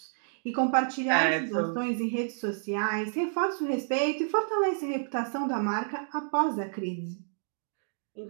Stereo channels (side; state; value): left; silent; digital silence